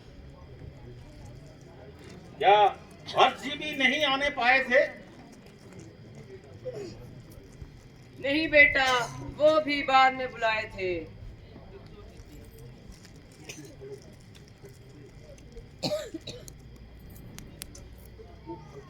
क्या भरत जी भी नहीं आने पाए थे? नहीं बेटा, वो भी बाद में बुलाए थे।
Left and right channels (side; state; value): both; identical; correlation 1.00